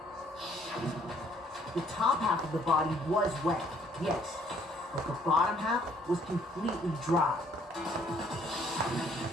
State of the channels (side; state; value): both; normal; correlation 0.63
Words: The top half of the body was wet, yes, but the bottom half was completely dry.